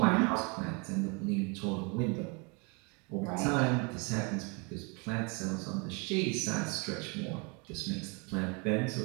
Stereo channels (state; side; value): quieter; left; 31.9 dB